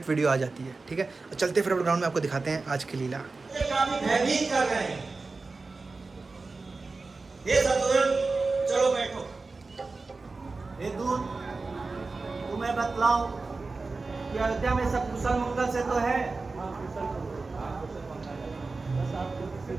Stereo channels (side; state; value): left; quieter; 3.8 dB